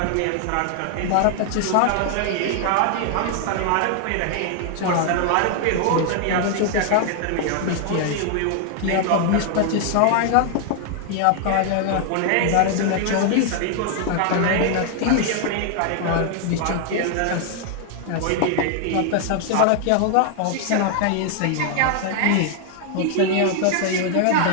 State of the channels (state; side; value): different; both; correlation 0.00